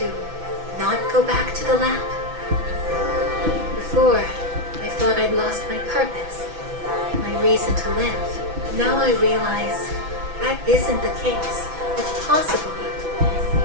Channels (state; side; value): late; left; 6.0 ms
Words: not go back to the lab? Before, I thought I'd lost my purpose, my reason to live. Now I realize that isn't the case. If possible,